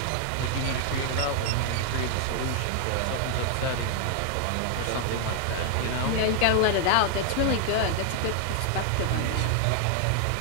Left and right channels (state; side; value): different; both; correlation 0.00